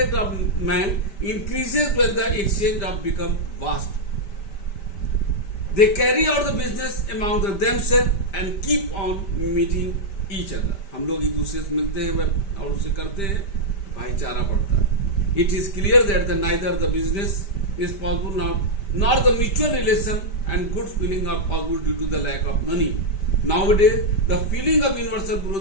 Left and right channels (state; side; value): late; right; 5.1 ms